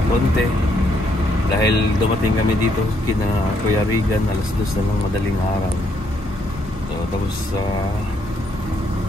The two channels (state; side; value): normal; both; correlation 0.73